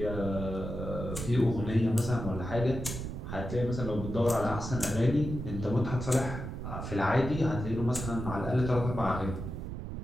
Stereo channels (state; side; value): noise; right; rumble, 6 dB below the sound